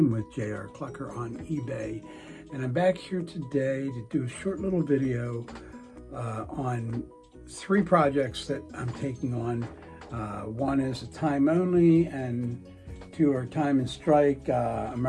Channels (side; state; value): both; identical; correlation 1.00